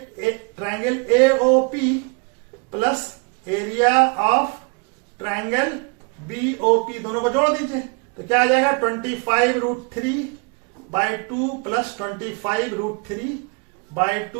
AOP plus area of triangle BOP, दोनों को जोड़ दीजिए। तो क्या आ जाएगा, 25√3/2 प्लस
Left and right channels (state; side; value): quieter; left; 33.3 dB